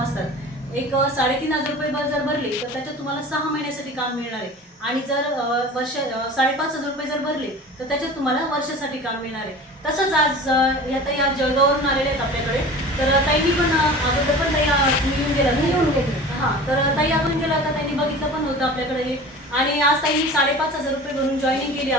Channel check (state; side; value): normal; both; correlation 0.38